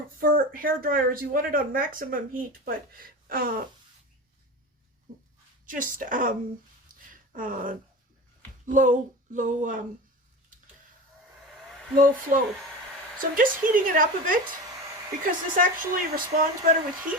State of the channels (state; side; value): normal; both; correlation 0.28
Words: hair dryers, you want it on maximum heat, but just low flow. So I'm just heating it up a bit because this actually responds better with